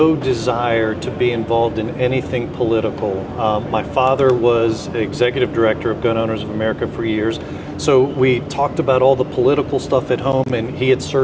desire to be involved in anything political. My father was executive director of Gun Owners of America for years, so we talked about all the political stuff at home, and he had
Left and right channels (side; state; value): both; identical; correlation 1.00